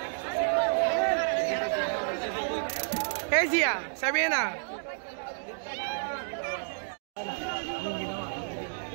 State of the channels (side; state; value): left; silent; 58 dB below the other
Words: Hey Zia, Sabina.